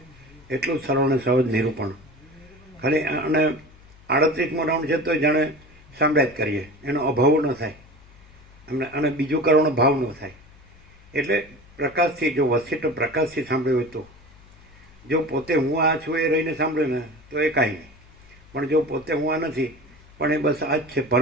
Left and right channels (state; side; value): noise; left; hum, 25 dB below the sound